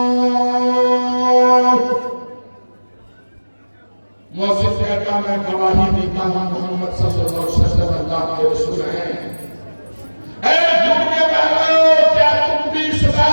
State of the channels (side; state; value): both; inverted; correlation -1.00